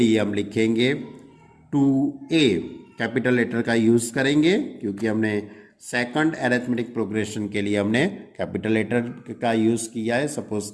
हम लिखेंगे 2a, कैपिटल लेटर का यूज करेंगे क्योंकि हमने सेकंड एरिथमेटिक प्रोग्रेशन के लिए हमने कैपिटल लेटर का यूज किया है, सपोज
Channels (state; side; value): identical; both; correlation 1.00